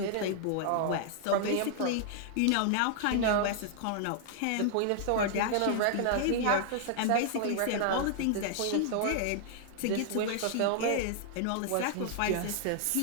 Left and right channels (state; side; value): different; both; correlation -0.01